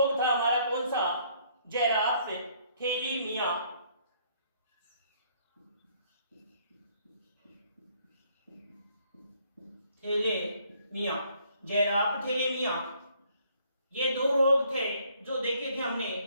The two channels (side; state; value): both; inverted; correlation -0.65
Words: था हमारा कौन सा? जैराफ थैलेमिया। थैलेमिया, जैराफ थैलेमिया। ये दो रोग थे जो देखे थे हमने।